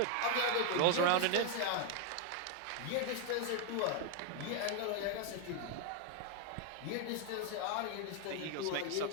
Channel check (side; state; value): both; different; correlation 0.01